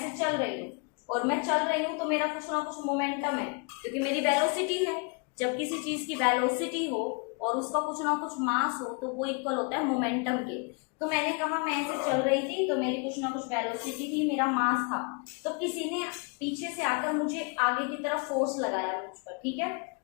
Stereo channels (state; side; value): quieter; right; 33.6 dB